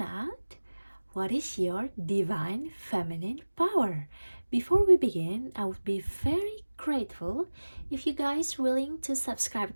out what is your divine feminine power. Before we begin, I would be very grateful if you guys willing to subscribe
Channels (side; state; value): both; inverted; correlation -1.00